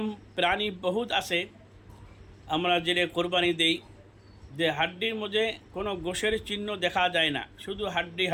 প্রাণী বহুত আছে আমরা যেটা কোরবানি দেই, যে হাড্ডির মধ্যে কোনো গোশের চিহ্ন দেখা যায় না, শুধু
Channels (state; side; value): identical; both; correlation 1.00